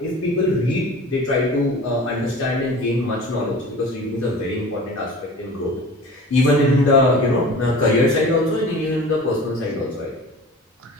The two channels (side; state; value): both; normal; correlation 0.39